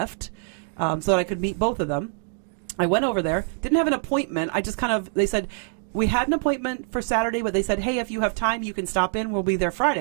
So that I could meet both of them. I went over there, didn't have an appointment. I just they said, we had an appointment for Saturday, but they said, hey, if you have time, you can stop in. We'll be there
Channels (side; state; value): left; silent; 57 dB below the other